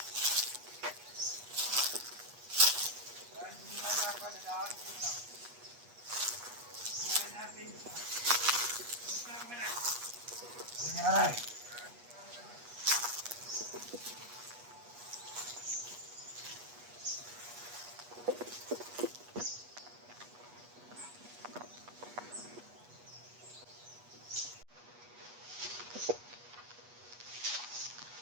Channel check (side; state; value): left; late; 8.3 ms